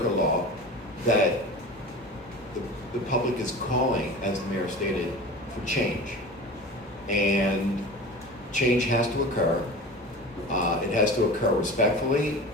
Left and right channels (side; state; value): both; normal; correlation 0.34